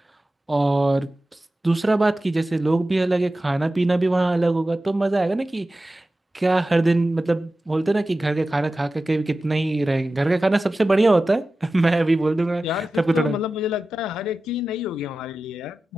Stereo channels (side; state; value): both; normal; correlation 0.95